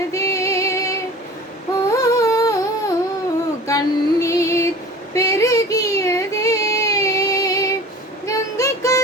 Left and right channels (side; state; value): both; normal; correlation 0.41